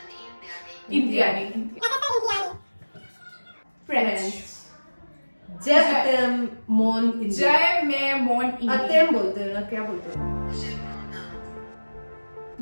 इंडियानी फ्रेंच जय अतेम मोन इंडिया। जय में मोन इंडिया अतेम बोलते हैं ना, क्या बोलते हैं?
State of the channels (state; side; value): inverted; both; correlation -1.00